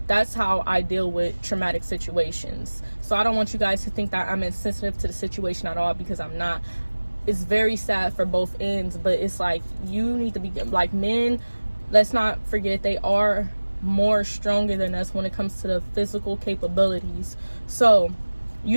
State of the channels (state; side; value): inverted; both; correlation -1.00